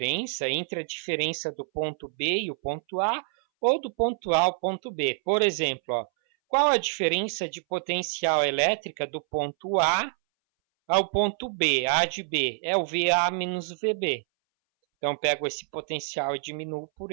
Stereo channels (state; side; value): silent; left; 60 dB below the other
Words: entre a diferença do ponto B e o ponto A, ou do ponto A ao ponto B. Por exemplo, ó, qual a diferença de potencial elétrica do ponto A ao ponto B? A de B é o VA menos o VB. Então, pego esse potencial e diminuo por